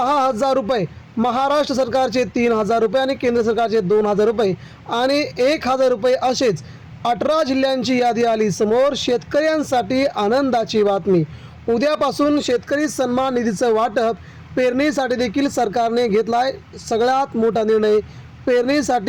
रुपये, महाराष्ट्र सरकारचे 3,000 रुपये आणि केंद्र सरकारचे 2,000 रुपये आणि 1,000 रुपये असेच 18 जिल्ह्यांची यादी आली समोर। शेतकऱ्यांसाठी आनंदाची बातमी, उद्यापासून शेतकरी सन्मान निधीचं वाटप। पेरणीसाठी देखील सरकारने घेतलाय सगळ्यात मोठा निर्णय।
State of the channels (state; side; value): identical; both; correlation 1.00